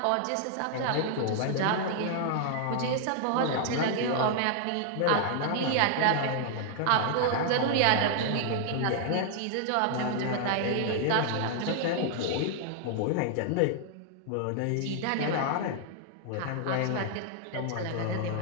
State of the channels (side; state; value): both; different; correlation 0.00